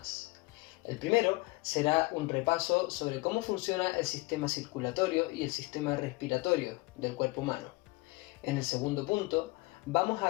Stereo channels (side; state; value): right; quieter; 23.9 dB